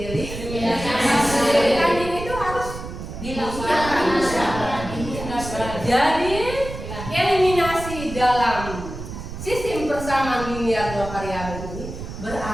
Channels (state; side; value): noise; right; rumble, 9 dB below the sound